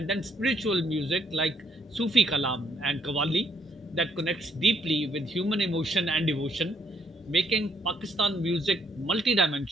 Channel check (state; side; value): normal; both; correlation 0.69